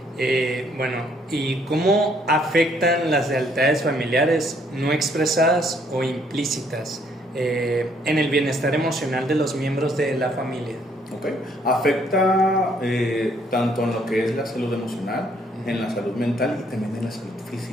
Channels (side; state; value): both; normal; correlation 0.66